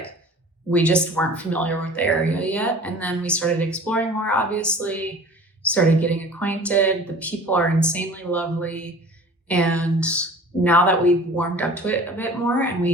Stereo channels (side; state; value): both; normal; correlation 0.44